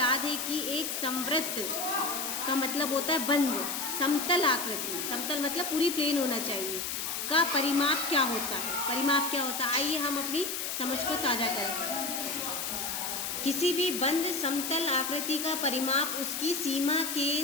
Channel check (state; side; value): noise; left; hiss, 3 dB below the sound